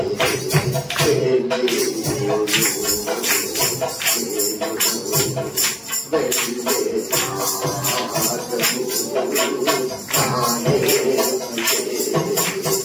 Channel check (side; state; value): both; identical; correlation 1.00